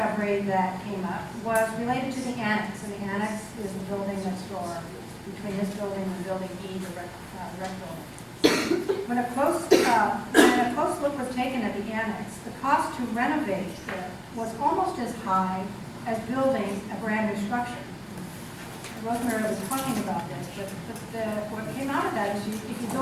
that came up was related to the annex, and the annex is the building next door between this building and building E, the rec building. When a close look was taken at the annex, the cost to renovate it was almost as high as building a brand new structure. Rosemary was talking about this, but what came out of that is if you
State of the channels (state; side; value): identical; both; correlation 1.00